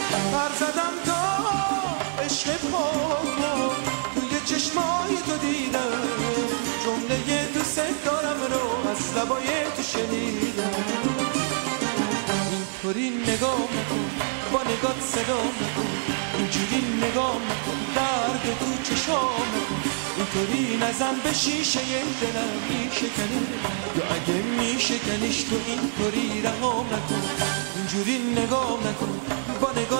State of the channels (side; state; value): left; silent; digital silence